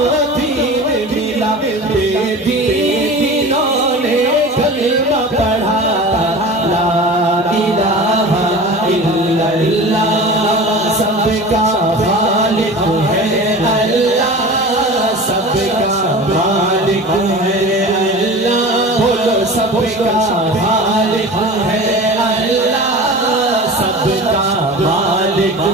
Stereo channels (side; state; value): both; normal; correlation 0.36